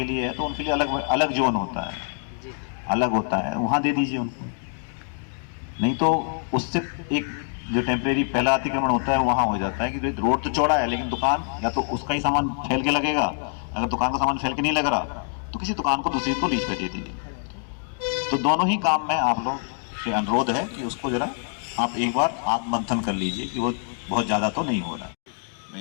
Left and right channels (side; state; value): right; silent; 55 dB below the other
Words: लिए है तो उनके लिए अलग अलग जोन होता है, अलग होता है, वहाँ दे दीजिए उनको। नहीं तो उससे एक जो टेम्परेरी पहला अतिक्रमण होता है वहाँ हो जाता है कि रोड तो चौड़ा है लेकिन दुकान या तो उसका ही सामान फैल के लगेगा, अगर दुकान का सामान फैल के नहीं लग रहा तो किसी दुकान को दूसरी को लीज पे दे देंगे। तो दोनों ही काम में आप लोग से अनुरोध है कि उसको जरा आप एक बार आत्ममंथन कर लीजिए कि वो बहुत ज़्यादा तो नहीं हो रहा।